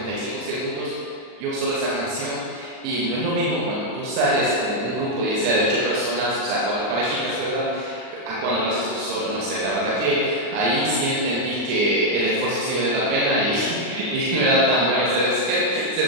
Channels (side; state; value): left; late; 38 ms